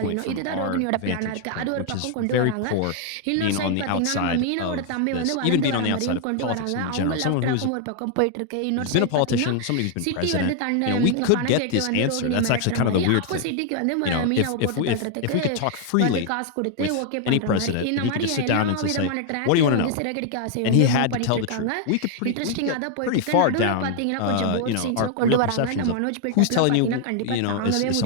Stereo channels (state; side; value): different; both; correlation 0.00